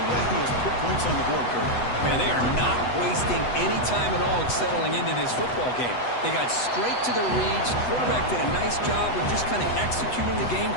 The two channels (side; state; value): right; late; 8.1 ms